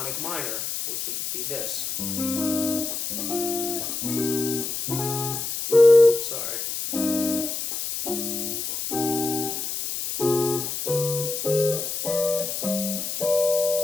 minor, which would be this. Sorry.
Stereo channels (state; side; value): noise; left; hiss, 3 dB below the sound